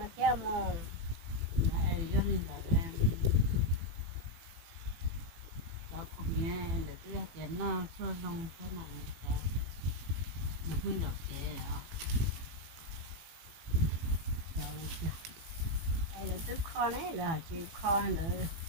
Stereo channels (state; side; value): late; left; 18 ms